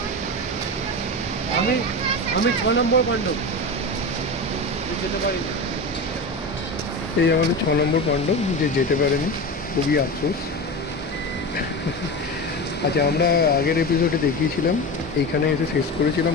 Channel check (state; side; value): normal; both; correlation 0.24